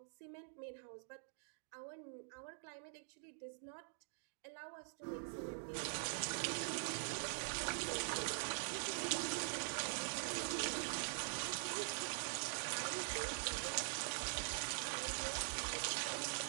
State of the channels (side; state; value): left; silent; digital silence